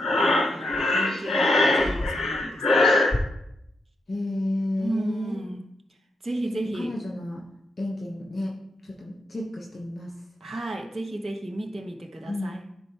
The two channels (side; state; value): both; normal; correlation 0.82